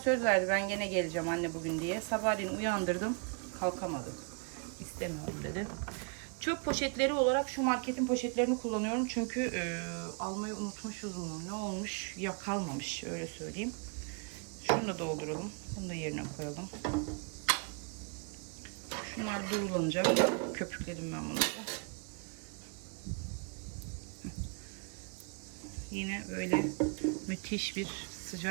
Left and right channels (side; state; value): left; quieter; 36.2 dB